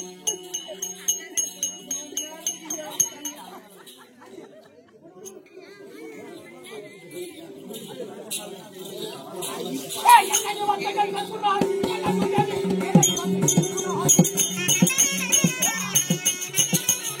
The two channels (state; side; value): identical; both; correlation 1.00